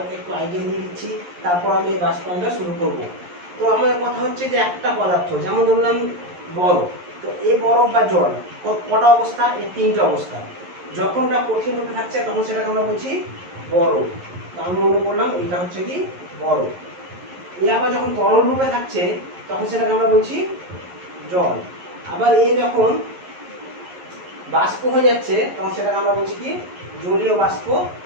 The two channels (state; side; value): late; left; 11 ms